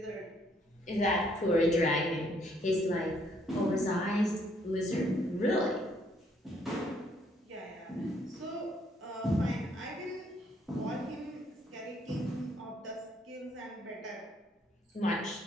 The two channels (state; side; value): normal; both; correlation 0.68